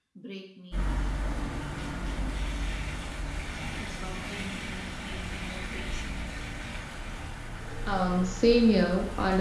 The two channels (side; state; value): both; identical; correlation 1.00